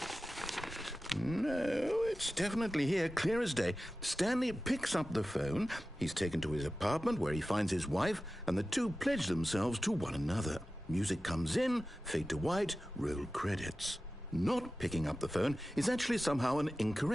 No, it's definitely here, clear as day. Stanley picks up the phone. He's taken to his apartment where he finds his wife, and the two pledge themselves to one another. Music comes in, fade to white, roll credits. Not picking up the phone is actually somehow an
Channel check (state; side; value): normal; both; correlation 0.95